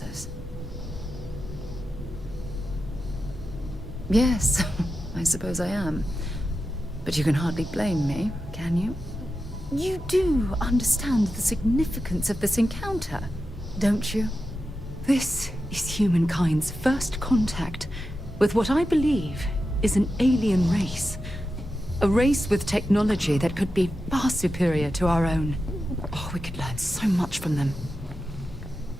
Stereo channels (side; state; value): both; normal; correlation 0.91